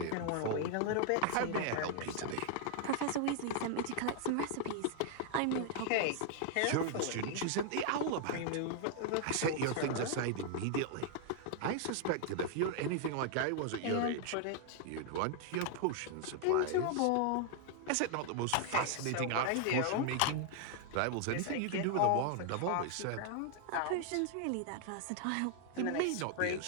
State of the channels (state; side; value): different; both; correlation 0.00